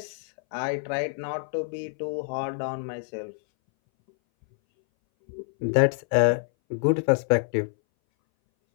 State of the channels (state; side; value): silent; right; 60 dB below the other